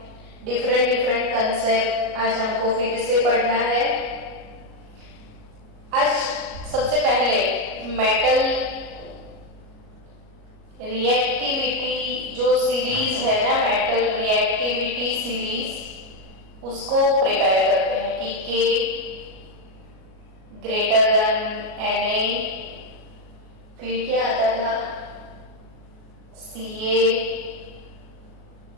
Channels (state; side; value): late; left; 37 ms